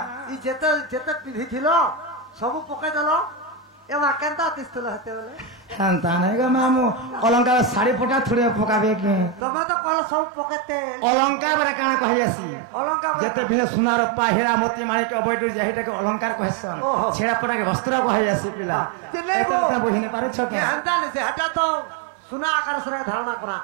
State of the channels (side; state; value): left; drops out; at 9.4 s